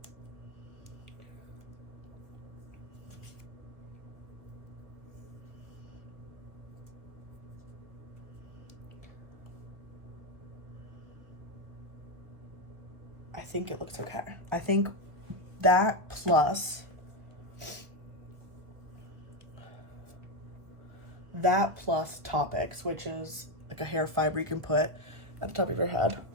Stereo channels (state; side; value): late; left; 1.5 ms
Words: I think it looks okay. I think that plus that plus Toppik, which is like a hair fiber you can put at the top of your head.